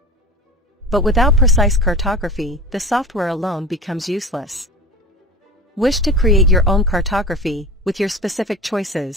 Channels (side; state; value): both; normal; correlation 0.32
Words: But without precise cartography, the software alone becomes useless. Wish to create your own cartography with your specific